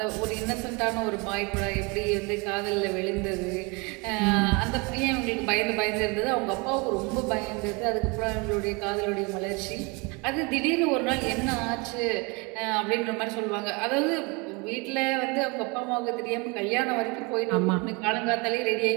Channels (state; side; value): quieter; left; 29.0 dB